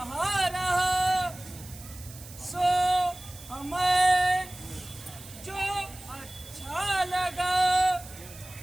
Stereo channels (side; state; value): right; noise; hiss, 17 dB below the sound